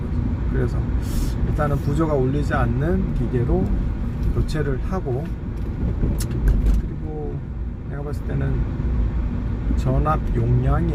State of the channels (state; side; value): identical; both; correlation 1.00